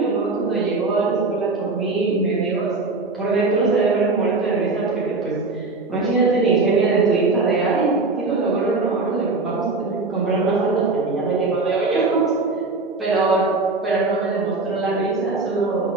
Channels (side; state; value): left; quieter; 3.6 dB